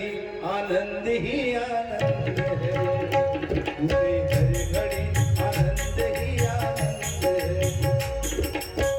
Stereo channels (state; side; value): identical; both; correlation 1.00